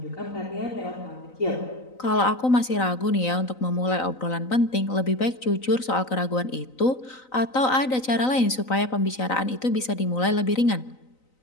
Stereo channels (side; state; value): right; late; 3.9 ms